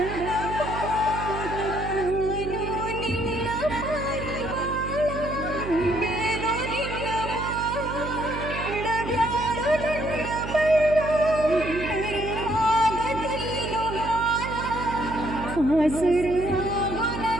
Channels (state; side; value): noise; right; hum, 7 dB below the sound